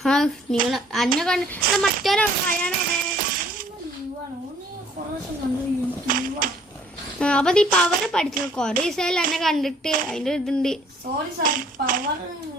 നിങ്ങൾ അന്നെ കണ്ട് മറ്റൊരാ അപ്പൊ ഈ പവറ് പഠിച്ചു കൊറേ ദിവസമായാലും എന്നെ കണ്ടിട്ട് അതിന്റെ ഇതുണ്ട്. Sorry sir, power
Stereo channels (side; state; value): both; normal; correlation 0.59